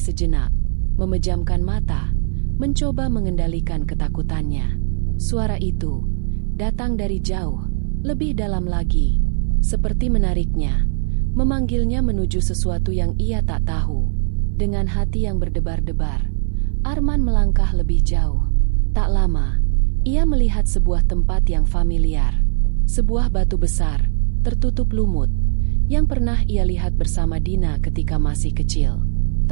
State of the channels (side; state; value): left; silent; 57 dB below the other